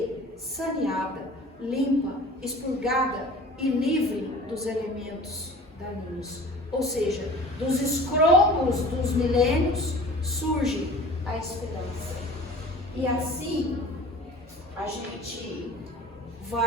saneada, limpa, expurgada e livre dos elementos daninhos. Ou seja, dos escrombos dos milênios surge a esperança. E assim a gente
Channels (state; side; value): normal; both; correlation 0.43